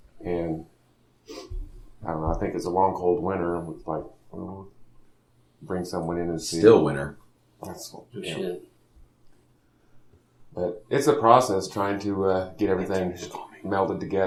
and I don't know. I think it's a long cold winter. And it's like bring someone in and see. Still winner. That's, good yeah. shit. But it's a process trying to get everything melded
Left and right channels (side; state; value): both; identical; correlation 1.00